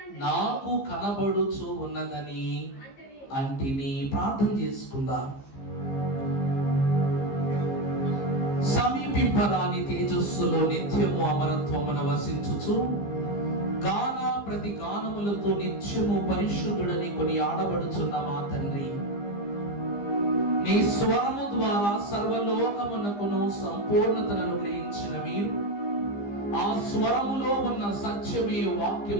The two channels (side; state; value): right; late; 15 ms